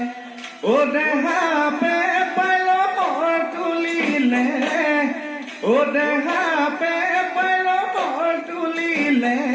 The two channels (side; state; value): both; identical; correlation 1.00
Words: ও দেহা পে পাইলৰ তুলিলে ও দেহা পে পাইলৰ তুলিলে